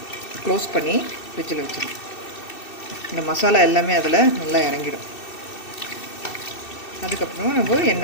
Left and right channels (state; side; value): late; right; 2.6 ms